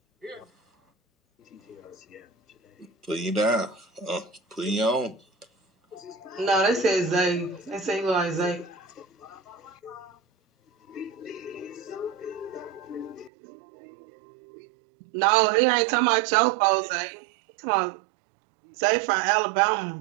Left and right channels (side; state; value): left; drops out; at 13.3 s